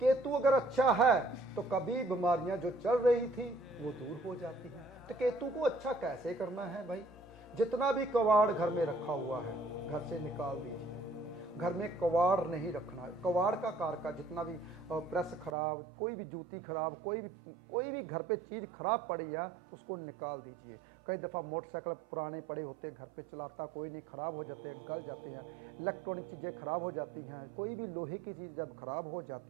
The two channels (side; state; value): left; drops out; at 15.5 s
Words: अगर अच्छा है तो कभी बीमारियां जो चल रही थी वो दूर हो जाती हैं। तो केतु को अच्छा कैसे करना है भाई, जितना भी कवाड़ घर में रखा हुआ है घर से निकाल दीजिए। घर में कवाड़ नहीं रखना है। कवाड़ का कारका जितना भी प्रेस खराब, कोई भी जूती खराब, कोई भी घर पे चीज़ खराब पड़ी है उसको निकाल दीजिए। कई दफ़ा मोटरसाइकिल पुराने पड़े होते हैं, घर पे चलाता कोई नहीं, ख़राब हो जाते हैं, गल जाते हैं, इलेक्ट्रॉनिक चीज़ें खराब हो जाती हैं, कोई भी लोहे की चीज़ जब खराब हो